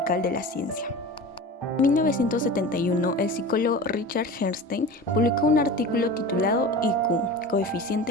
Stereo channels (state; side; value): normal; both; correlation 0.33